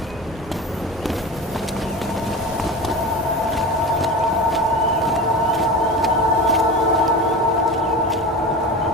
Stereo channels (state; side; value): normal; both; correlation 0.30